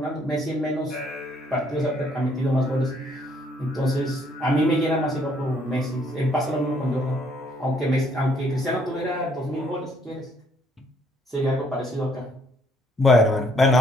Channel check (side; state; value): both; normal; correlation 0.66